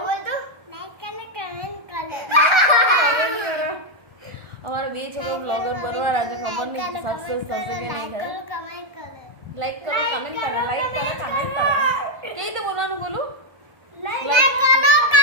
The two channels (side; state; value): left; late; 1.2 ms